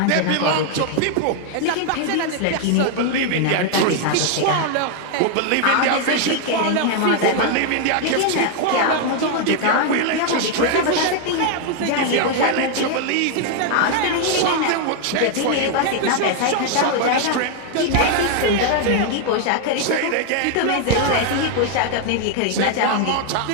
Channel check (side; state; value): both; different; correlation 0.00